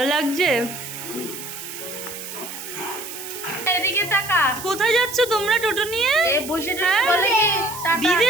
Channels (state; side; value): noise; right; hiss, 10 dB below the sound